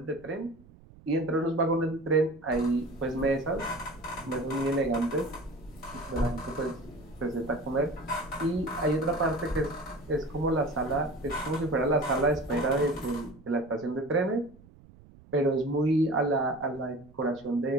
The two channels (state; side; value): noise; right; rumble, 23 dB below the sound